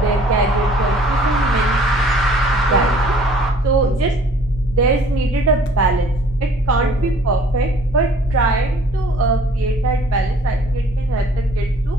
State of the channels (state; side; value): noise; left; hum, 18 dB below the sound